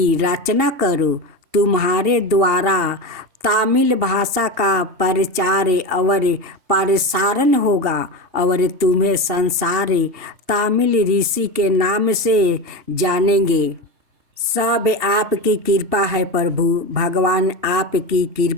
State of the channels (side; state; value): left; late; 2.7 ms